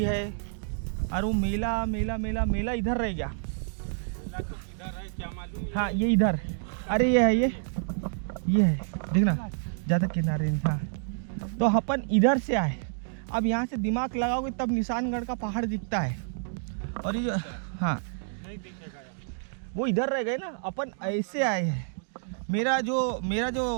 है, और वो मेला मेला मेला मेला इधर रह गया। हाँ ये इधर, अरे ये है, ये है, देखना ज़्यादा किनारे नहीं। हाँ, तो अपन इधर से आए। अब यहाँ से दिमाग लगाओगे तब निशानगढ़ का पहाड़ दिखता है। और ये जो, हाँ वो इधर रह गए ना, अपन ऐसे आए हैं। मेरा जो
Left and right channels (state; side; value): silent; left; digital silence